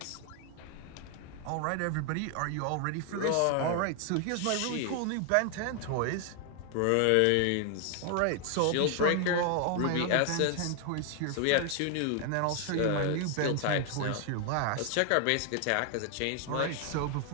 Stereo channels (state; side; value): different; both; correlation 0.00